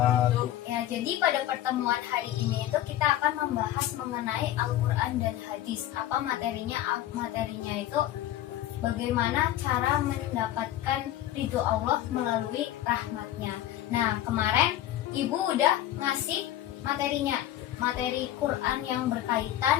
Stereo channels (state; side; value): quieter; right; 13.1 dB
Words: Ya, jadi pada pertemuan hari ini itu kita akan membahas mengenai Al-Quran dan Hadis. Apa materinya? Materinya itu bagaimana cara mendapatkan ridho Allah melalui rahmatnya. Nah, kemarin Ibu udah ngasih materinya, materi Quran yang